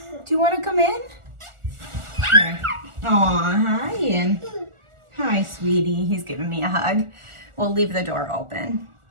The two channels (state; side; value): late; left; 1.4 ms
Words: Do you want to come in? Here. Aw, hi, and hi, sweetie. He's giving me a hug. We'll leave the door open.